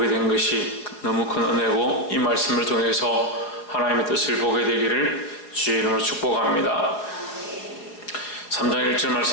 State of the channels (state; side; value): late; right; 4.9 ms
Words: 된 것이 너무 큰 은혜고, 이 말씀을 통해서 하나님의 뜻을 보게 되기를 주의 이름으로 축복합니다. 3장 1절